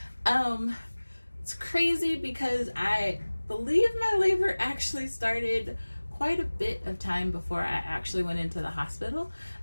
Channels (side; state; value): both; inverted; correlation -1.00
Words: It's crazy because I believe my labor actually started quite a bit of time before I actually went into the hospital.